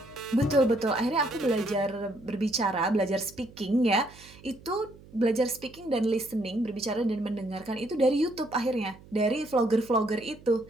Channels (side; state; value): right; noise; hum, 22 dB below the sound